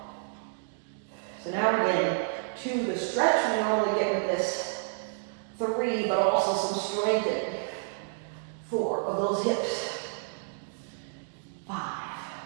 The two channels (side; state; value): left; silent; digital silence